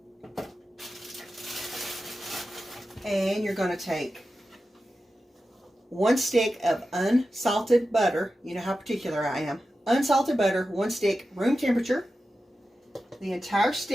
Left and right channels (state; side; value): normal; both; correlation 0.92